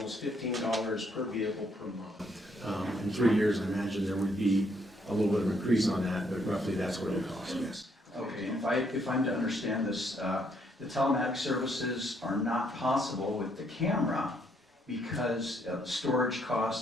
$15 per vehicle per month. In 3 years, I imagine there would be a little bit of increase on that, but roughly that's what it would cost, yes. Okay, if I'm to understand this, the telematic services are not possible with the camera because storage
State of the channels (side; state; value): both; normal; correlation 0.71